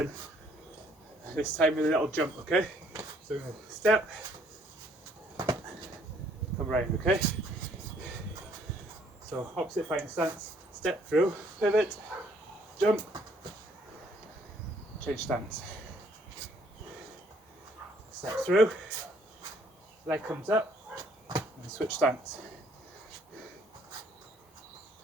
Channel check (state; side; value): normal; both; correlation 0.64